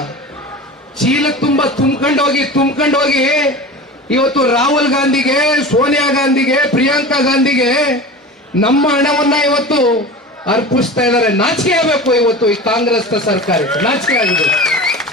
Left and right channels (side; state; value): both; normal; correlation 0.33